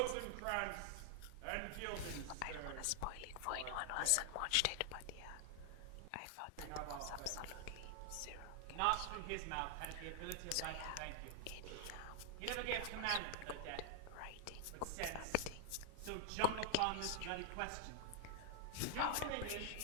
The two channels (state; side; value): different; both; correlation 0.00